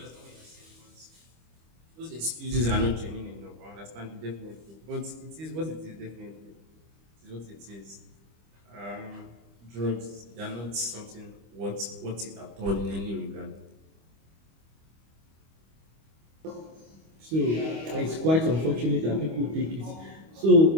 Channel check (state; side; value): late; left; 25 ms